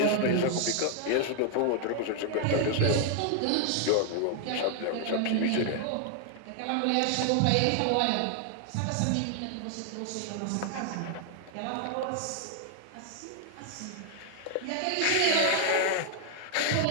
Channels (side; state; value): both; different; correlation 0.00